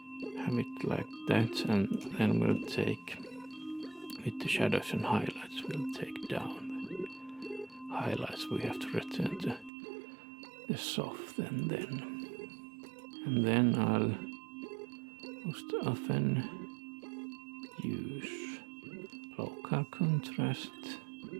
have it like that, and then we'll take, with the shadows and highlights, we'll take down the highlights. We have to return to the soft and then I'll most often use local contrast,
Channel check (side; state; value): left; drops out; at 9.7 s